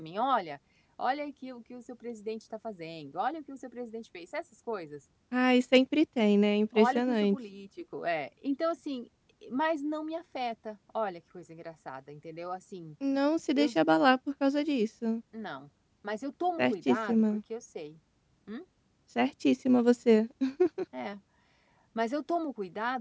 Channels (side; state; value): both; identical; correlation 1.00